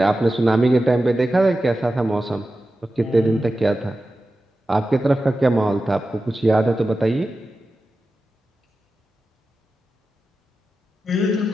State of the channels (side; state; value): both; normal; correlation 0.93